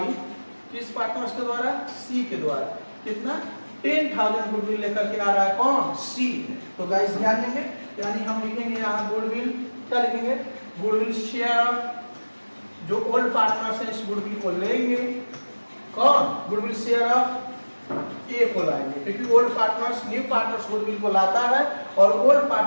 किस पार्टनर्स के द्वारा, सी के द्वारा। कितना 10,000 गुडविल लेकर के आ रहा है कौन, सी। तो गाइस ध्यान देंगे, यानी हम लिखेंगे यहाँ गुडविल, क्या लिखेंगे, गुडविल शेयर, जो ओल्ड पार्टनर्स है इस गुडविल को लेंगे, कौन, गुडविल शेयर ऑफ ए को लाएंगे, क्योंकि old partners new partners goodwill को लाता है और ओल्ड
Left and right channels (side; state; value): both; inverted; correlation -1.00